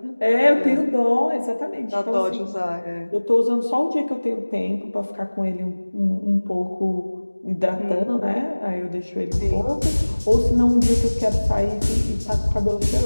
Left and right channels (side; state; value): both; inverted; correlation -1.00